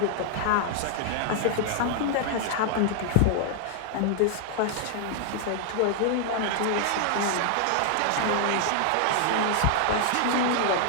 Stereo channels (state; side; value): different; both; correlation 0.00